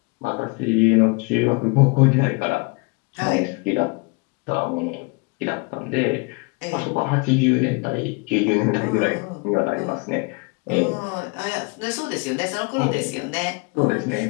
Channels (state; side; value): quieter; right; 29.5 dB